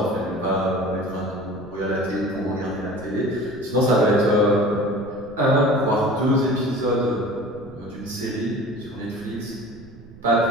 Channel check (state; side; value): noise; right; rumble, 21 dB below the sound